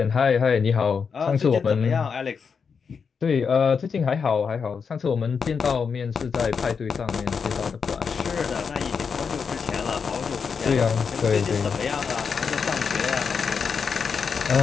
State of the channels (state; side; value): quieter; right; 5.9 dB